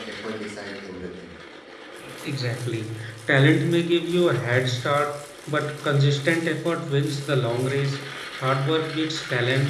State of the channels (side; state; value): both; identical; correlation 1.00